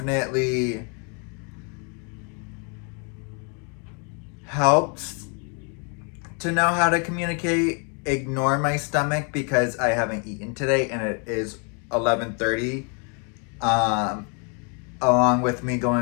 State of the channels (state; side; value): quieter; right; 37.4 dB